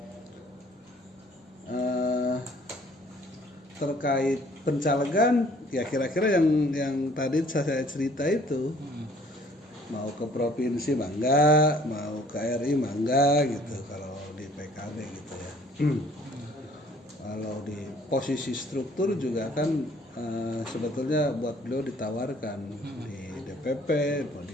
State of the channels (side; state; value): both; normal; correlation 0.57